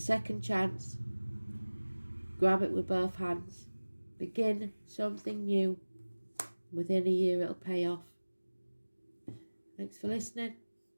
chance. Grab it with both hands. Begin something new. Within a year it'll pay off. Thanks for listening.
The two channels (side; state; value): both; inverted; correlation -1.00